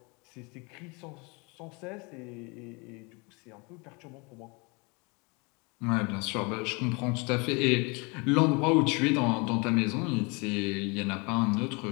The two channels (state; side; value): quieter; right; 29.7 dB